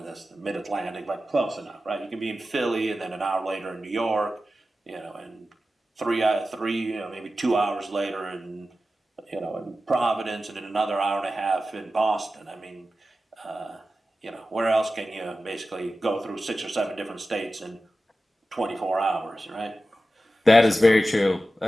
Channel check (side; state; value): both; normal; correlation 0.94